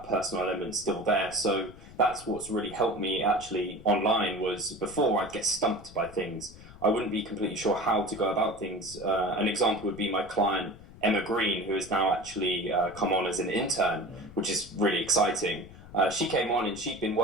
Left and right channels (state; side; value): noise; left; rumble, 18 dB below the sound